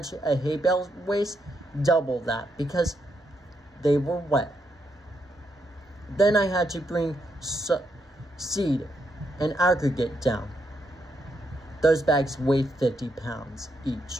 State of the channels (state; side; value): normal; both; correlation 0.80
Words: a hay bale weighs, double that, because they were wet. Then I had to bring seed and aggregate down. Those bags weigh 50 pounds each.